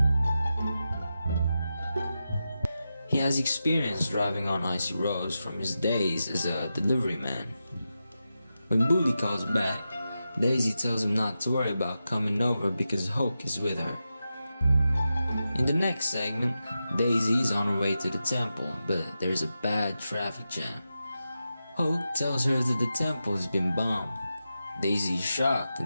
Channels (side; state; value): both; inverted; correlation -0.90